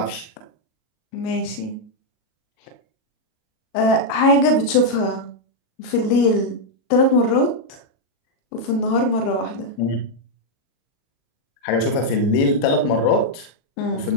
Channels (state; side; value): late; right; 37 ms